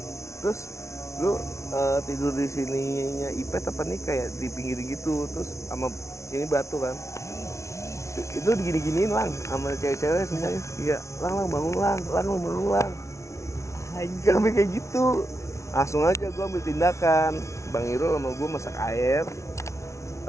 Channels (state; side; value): late; right; 0.14 ms